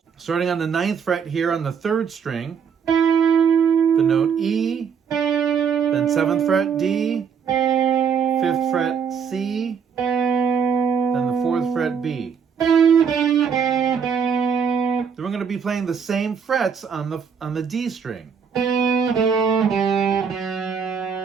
Starting on the 9th fret here on the 3rd string, the note E, then 7th fret D, 5th fret C, then the 4th fret B. Then we're going to be playing the same frets on the D string.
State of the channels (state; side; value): quieter; left; 6.8 dB